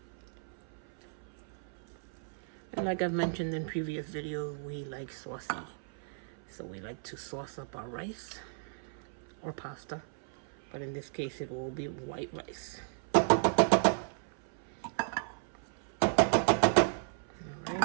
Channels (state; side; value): silent; left; 54 dB below the other